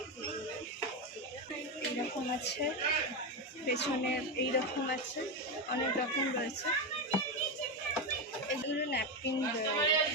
এইরকম আছে, পেছনে এইরকম আছে, অনেক রকম রয়েছে। এগুলো ন্যাপকিন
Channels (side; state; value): both; normal; correlation 0.12